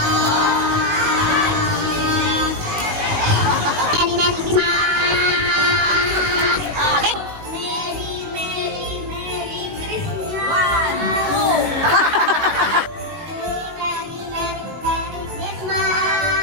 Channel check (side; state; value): left; late; 19 ms